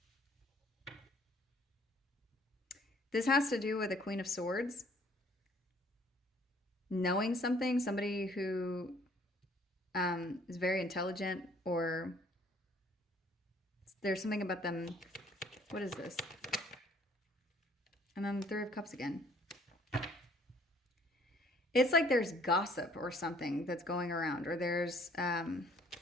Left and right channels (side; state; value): both; normal; correlation 0.59